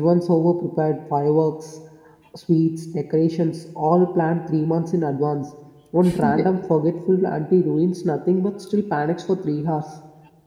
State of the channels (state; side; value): identical; both; correlation 1.00